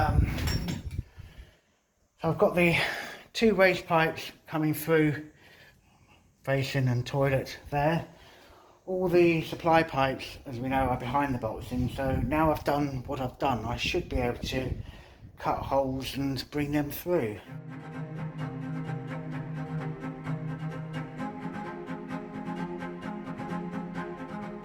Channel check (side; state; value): both; identical; correlation 1.00